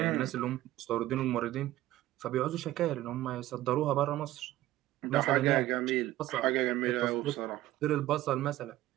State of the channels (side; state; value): left; quieter; 15.4 dB